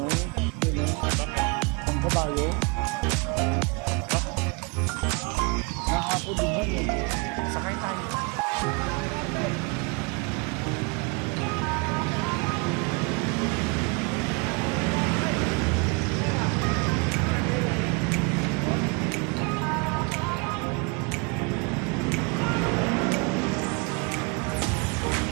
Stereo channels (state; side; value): quieter; left; 30.2 dB